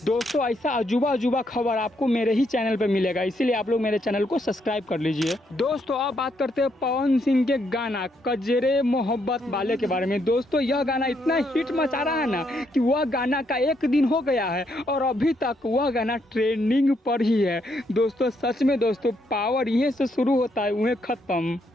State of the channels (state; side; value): normal; both; correlation 0.75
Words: दोस्तों ऐसा अजूबा खबर आपको मेरे ही चैनल पे मिलेगा, इसीलिए आप लोग मेरे चैनल को सब्सक्राइब कर लीजिए। दोस्तों अब बात करते हैं पवन सिंह के गाना कजरे मोहब्बत वाले के बारे में। दोस्तों यह गाना इतना हिट मचा रहा है ना कि वह गाना का 1 दिन हो गया है और अभी तक वह गाना ट्रेंडिंग पर ही है। दोस्तों सच में दोस्तों पावर यहीं से शुरू होता है वहीं खत्म।